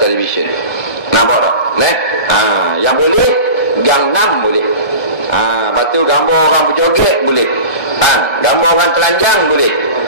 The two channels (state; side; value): late; right; 1.6 ms